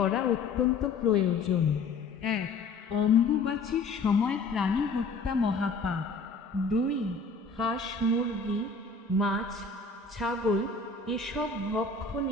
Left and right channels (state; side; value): quieter; right; 4.3 dB